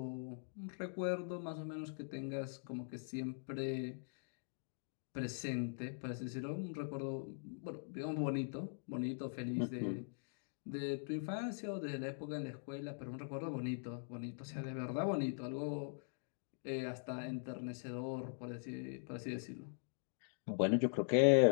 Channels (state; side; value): silent; right; digital silence